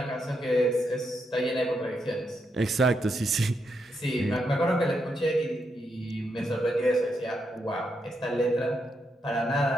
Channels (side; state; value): both; normal; correlation 0.81